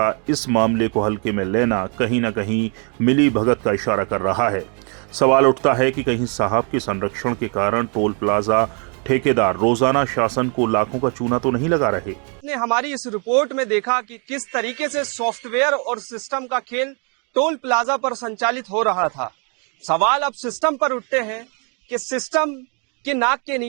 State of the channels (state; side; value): quieter; left; 37.2 dB